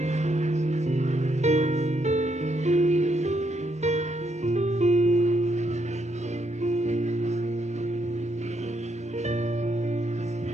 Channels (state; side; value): normal; both; correlation 0.76